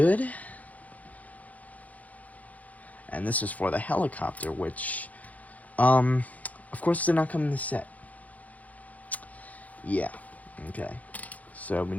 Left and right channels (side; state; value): right; late; 0.074 ms